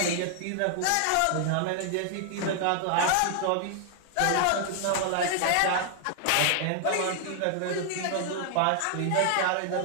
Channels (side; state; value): both; different; correlation 0.00